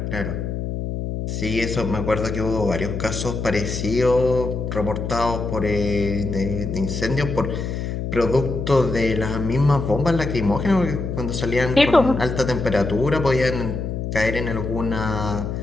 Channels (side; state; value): left; noise; hum, 4 dB below the sound